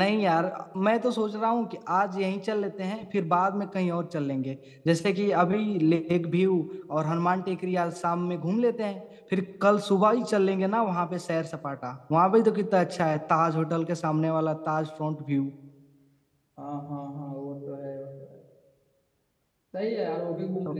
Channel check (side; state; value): both; identical; correlation 1.00